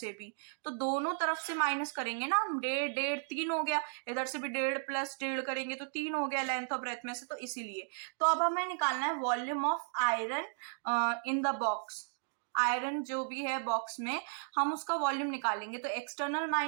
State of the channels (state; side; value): silent; left; digital silence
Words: भी, तो दोनों तरफ से माइनस करेंगे ना हम, 1.5 3 हो गया, इधर से भी 1.5 प्लस 1.5 करेंगे तो 3 हो गया लेंथ और ब्रेथ में से, तो इसीलिए। तो अब हमें निकालना है volume of iron in the box. Iron जो भी है बॉक्स में हम उसका वॉल्यूम निकालेंगे, तो एक्सटर्नल